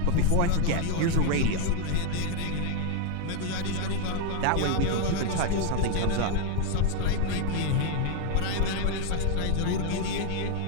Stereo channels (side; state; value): both; different; correlation 0.00